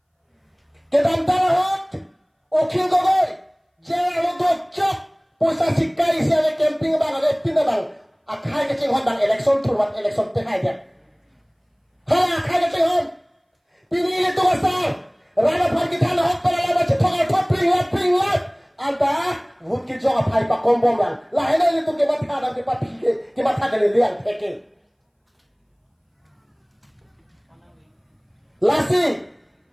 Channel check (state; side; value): identical; both; correlation 1.00